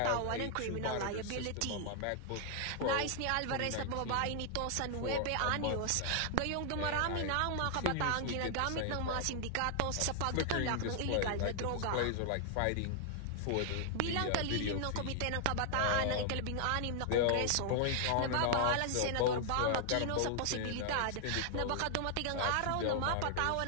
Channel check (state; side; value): different; both; correlation 0.00